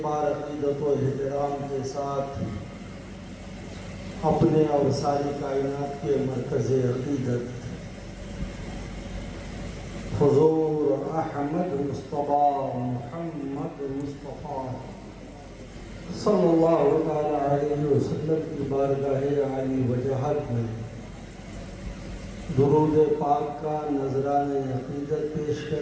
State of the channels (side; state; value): both; identical; correlation 1.00